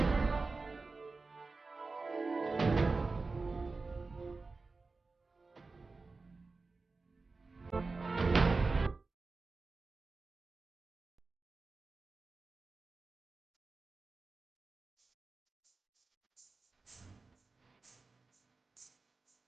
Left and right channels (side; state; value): left; quieter; 3.9 dB